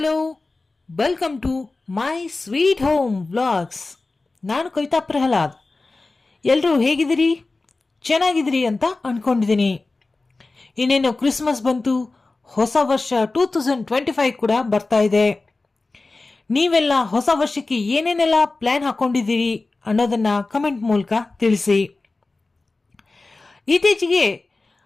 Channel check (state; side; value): quieter; right; 3.4 dB